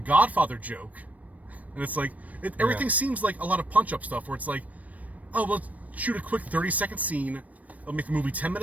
joke? And it's like, everything seems like a lot of punch-up stuff where it's like, oh, let's shoot a quick 30-second scene. It'll make the movie 10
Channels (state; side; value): late; left; 0.071 ms